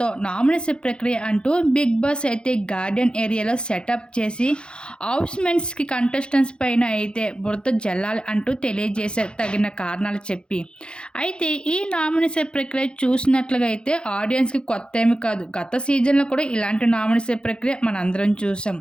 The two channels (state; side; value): late; right; 0.052 ms